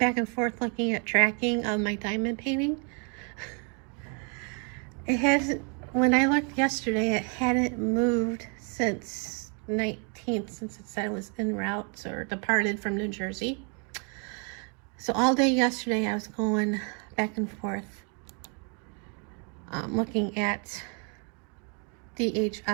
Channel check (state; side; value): quieter; left; 38.3 dB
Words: and forth looking at tracking of my diamond painting. It hasn't, when I looked yesterday, it hadn't moved since 19th, since it said it was en route or departed from New Jersey. So all day yesterday I was going back and forth looking at